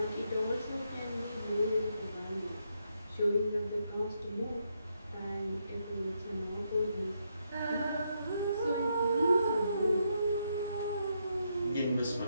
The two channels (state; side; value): inverted; both; correlation -0.79